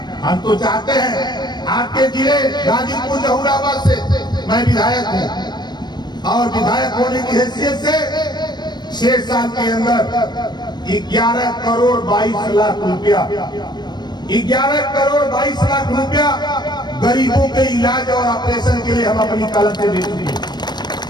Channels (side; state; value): right; late; 0.21 ms